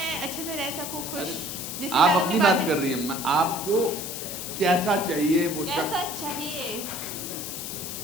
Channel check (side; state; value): left; noise; hiss, 6 dB below the sound